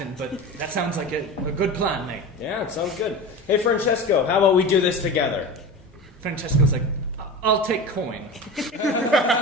but that sounds like a good plan, mate. Yeah, it sounds good. Hey, Francesco, how about we do this together? Francesco's like, I'll take coin.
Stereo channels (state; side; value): normal; both; correlation 0.29